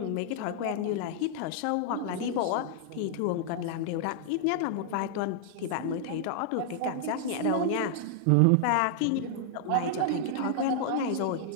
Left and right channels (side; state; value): both; different; correlation -0.01